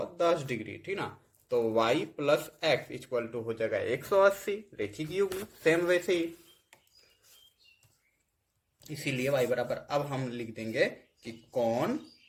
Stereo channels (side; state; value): both; identical; correlation 1.00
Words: डिग्री, ठीक ना। तो y plus X equal to हो जाएगा 180, रेखिक युग्म सेम वैसे ही। इसीलिए y बराबर अब हम लिख देंगे कि कौन